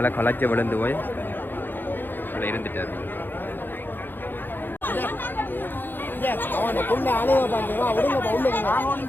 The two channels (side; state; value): right; late; 0.094 ms